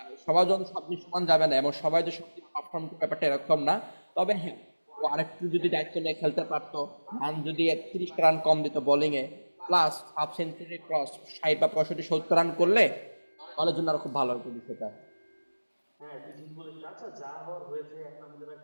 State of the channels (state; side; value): inverted; both; correlation -1.00